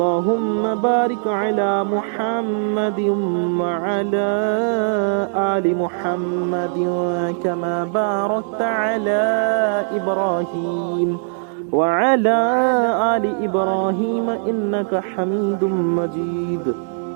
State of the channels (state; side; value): silent; left; 66 dB below the other